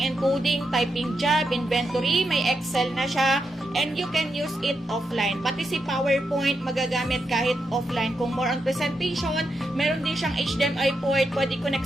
and coding, typing job, inventory, may Excel na siya. And you can use it offline. Pati si PowerPoint, magagamit kahit offline. Kung more on presentation, meron din siyang HDMI port, pwede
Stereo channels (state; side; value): normal; both; correlation 0.85